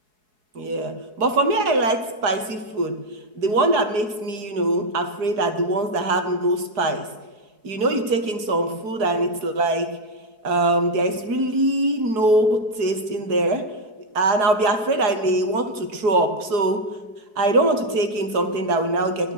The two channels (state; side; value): late; left; 4.7 ms